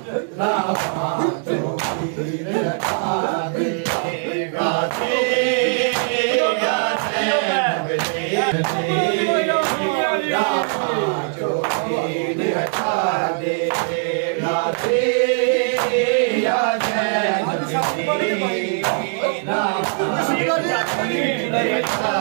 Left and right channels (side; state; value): left; silent; digital silence